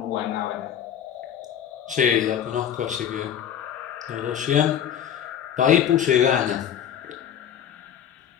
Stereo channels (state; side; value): quieter; right; 9.6 dB